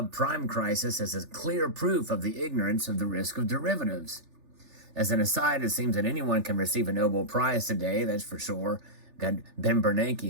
crisis is a clear proof of the ignorance of the risk of derivatives. As an aside, it seems that anyone can receive a Nobel Prize today, that's for sure. Ben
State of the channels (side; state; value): left; late; 3.4 ms